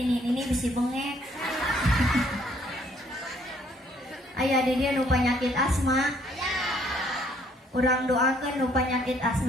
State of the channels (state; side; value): normal; both; correlation 0.65